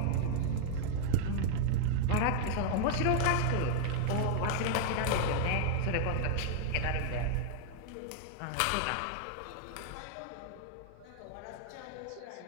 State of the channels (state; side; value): different; both; correlation 0.00